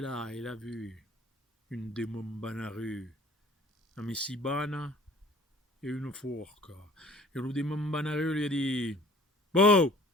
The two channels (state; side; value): normal; both; correlation 0.51